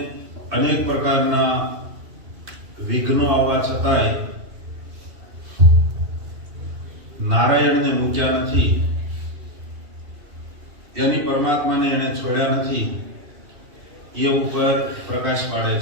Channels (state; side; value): late; left; 2.7 ms